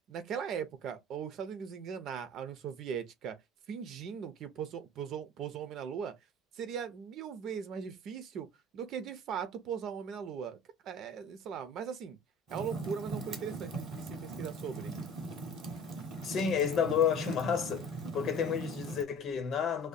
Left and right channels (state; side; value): normal; both; correlation 0.42